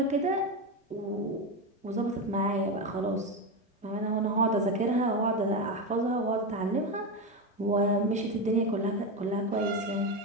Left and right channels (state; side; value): normal; both; correlation 0.14